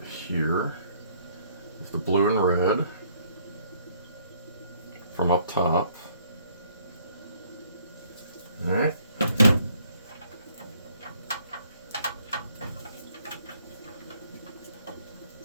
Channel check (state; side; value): inverted; both; correlation -0.64